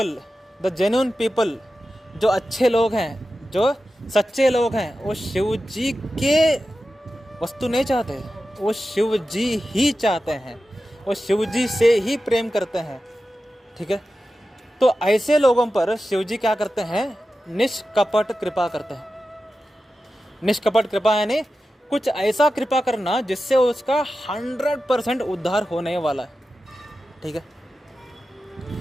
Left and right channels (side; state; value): both; normal; correlation 0.93